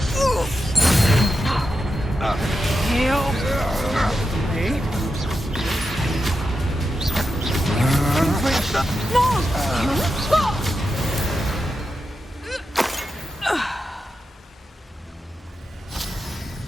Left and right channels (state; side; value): normal; both; correlation 0.89